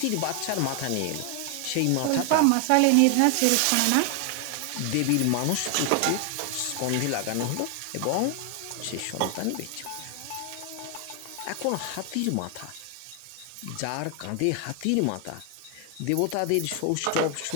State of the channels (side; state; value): both; different; correlation 0.00